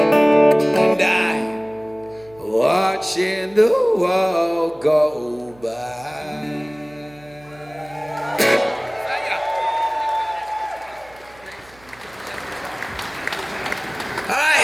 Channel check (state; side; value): noise; right; hum, 26 dB below the sound